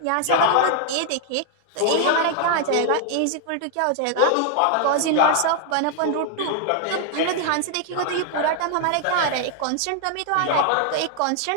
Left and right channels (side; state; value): both; different; correlation 0.00